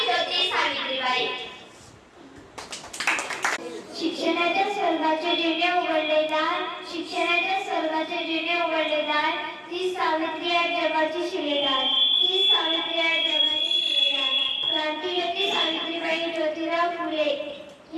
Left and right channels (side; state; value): both; identical; correlation 1.00